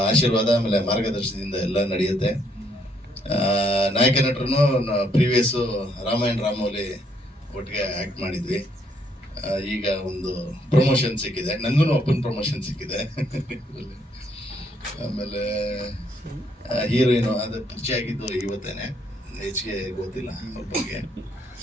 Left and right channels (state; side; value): normal; both; correlation 0.71